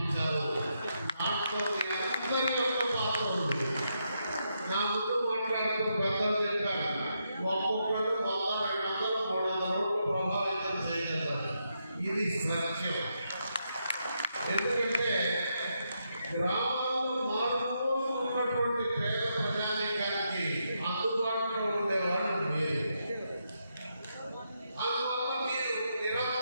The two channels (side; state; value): both; inverted; correlation -0.81